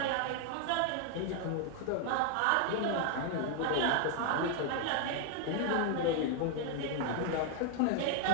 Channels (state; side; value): different; both; correlation 0.01